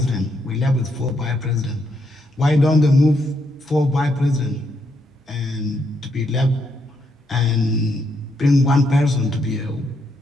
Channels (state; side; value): normal; both; correlation 0.77